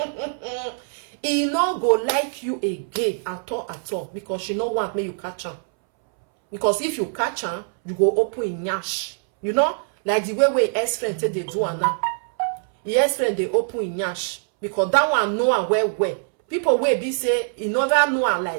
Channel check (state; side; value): silent; left; 63 dB below the other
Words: He not go like you again at all because she no want me you catch her. Because if you catch her, you go open in yash. You know, like the way ex-friend say they do now. The ex-friend they open in yash because that one know her well. People will be say he never know her